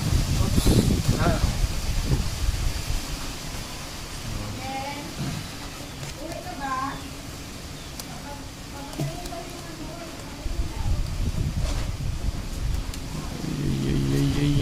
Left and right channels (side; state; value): both; identical; correlation 1.00